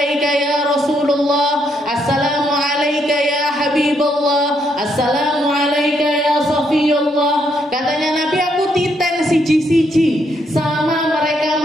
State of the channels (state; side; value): normal; both; correlation 0.74